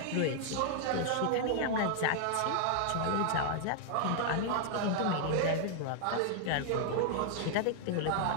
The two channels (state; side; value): different; both; correlation 0.00